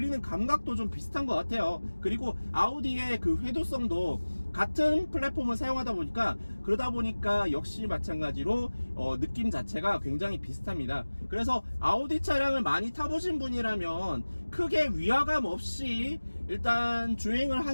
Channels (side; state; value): both; inverted; correlation -1.00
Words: 감각도 좀 비슷한 것 같아요. 그리고 아우디의 그 회도성도 같은 플랫폼을 사용하다 보니까, 그러다 보니까 역시 마찬가지로 느낌 자체가 굉장히 비슷합니다. 그래서 아우디 차량을 많이 타보신 분이라면 크게 위화감 없이 일단 주행을